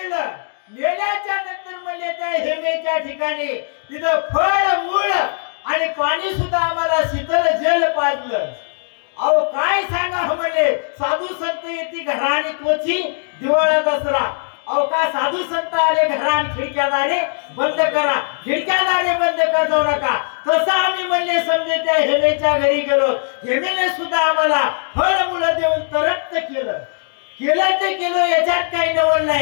नेल्याच्या नंतर म्हणजे त्या हेमेच्या ठिकाणी तिथं फळ मूळ आणि पाणी सुद्धा आम्हाला शीतल जल पाजलं. अहो काय सांगा म्हणले, साधू संत येते घरा आणि तोची दिवाळा दसरा. अहो का साधू संत आले घरा आणि खिडक्या दारे बंद करा, खिडक्या दारे बंद कर जाऊ नका. तसं आम्ही म्हणले समजे त्या हेमेच्या घरी गेलो. हेमेने सुद्धा आम्हाला फळ मुलं देऊन तरक्त केलं. केलं ते केलं, याच्यात काही नवल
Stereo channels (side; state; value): right; silent; 62 dB below the other